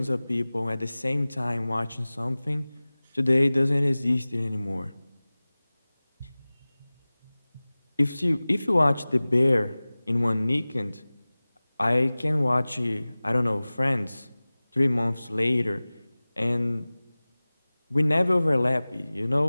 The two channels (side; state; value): both; inverted; correlation -0.99